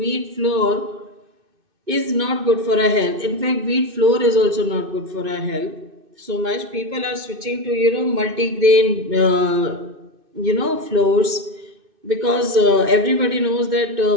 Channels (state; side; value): late; left; 2.6 ms